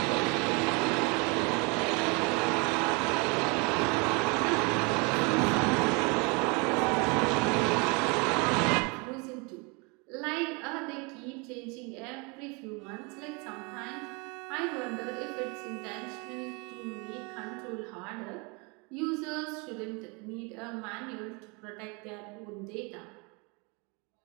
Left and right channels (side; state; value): left; quieter; 30.5 dB